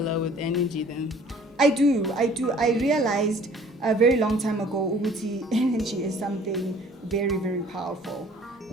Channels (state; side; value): normal; both; correlation 0.53